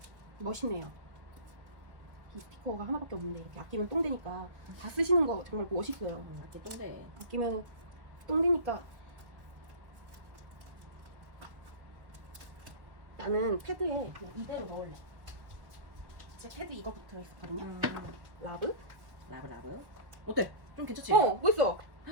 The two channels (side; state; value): left; late; 1.2 ms